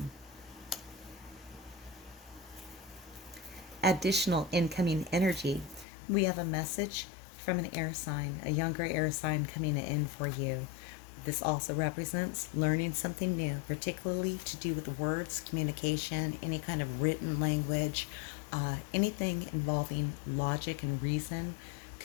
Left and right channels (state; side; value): drops out; right; at 5.9 s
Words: Additional incoming energy. We have a message from an air sign, a younger air sign coming in for you. This also represents learning something new, particularly to do with words, communication, any kind of written language, anything involving logic and reason.